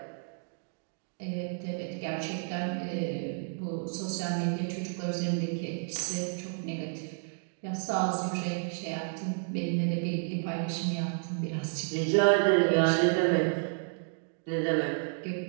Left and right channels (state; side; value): silent; left; 57 dB below the other